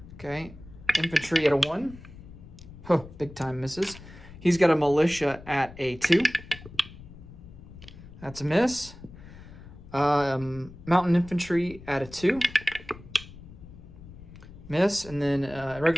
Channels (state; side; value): noise; left; rumble, 17 dB below the sound